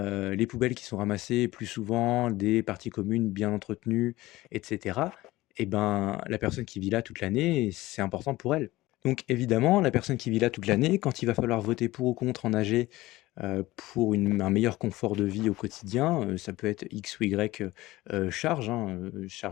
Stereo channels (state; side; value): quieter; right; 18.3 dB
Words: poubelles qui sont ramassées plus souvent, des parties communes bien entretenues et cetera, et ben, la personne qui vit là toute l'année, c'est important pour elle. Donc évidemment, la personne qui vit là toute l'année, quand il va falloir voter pour ou contre en AG, pour un meilleur confort de vie au quotidien, ça peut être X ou Y, charges, hein,